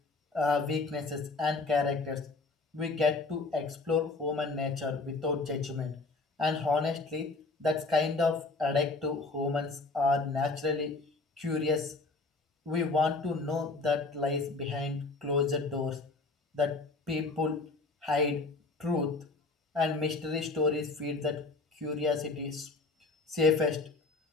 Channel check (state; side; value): quieter; right; 3.6 dB